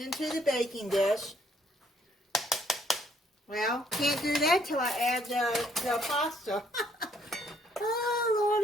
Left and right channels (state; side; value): normal; both; correlation 0.67